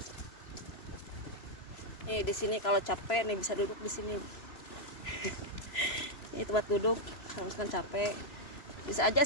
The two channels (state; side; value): late; right; 3.0 ms